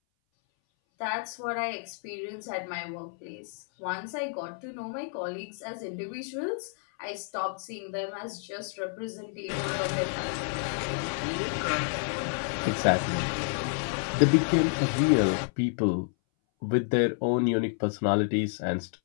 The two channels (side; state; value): right; silent; 58 dB below the other